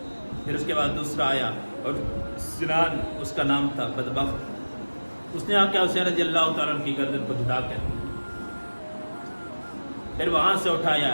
پھر اس کے بعد دوسرا آیا اور سنان اس کا نام تھا، بدبخت، اس نے آ کے حسین رضی اللہ تعالیٰ عنہ کی گردن کو جدا کر دیا، پھر وہاں سے اٹھایا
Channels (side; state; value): both; inverted; correlation -1.00